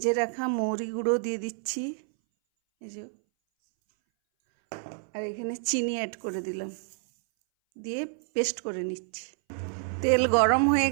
রাখা মৌরি গুঁড়ো দিয়ে দিচ্ছি, এই যে, আর এখানে চিনি অ্যাড করে দিলাম, দিয়ে পেস্ট করে নিচ্ছি। তেল গরম হয়ে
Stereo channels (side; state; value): left; silent; 59 dB below the other